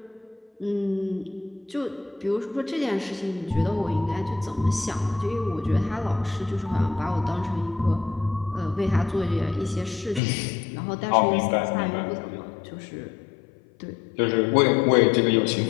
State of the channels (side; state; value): right; drops out; at 10.2 s